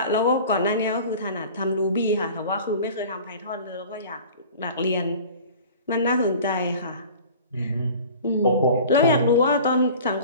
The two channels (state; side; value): inverted; both; correlation -0.42